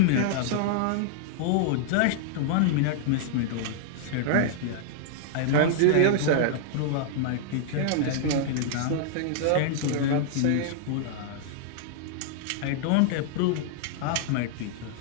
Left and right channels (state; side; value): different; both; correlation -0.01